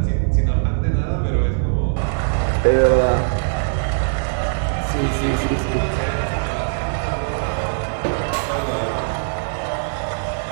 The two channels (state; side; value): silent; left; digital silence